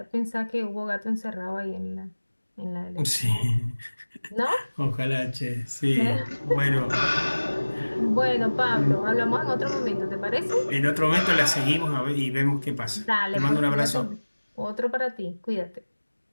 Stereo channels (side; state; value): both; inverted; correlation -1.00